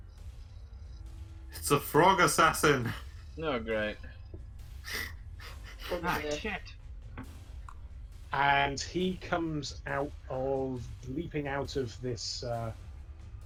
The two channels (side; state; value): both; identical; correlation 1.00